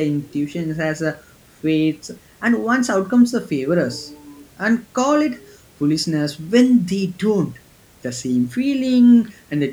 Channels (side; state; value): both; identical; correlation 1.00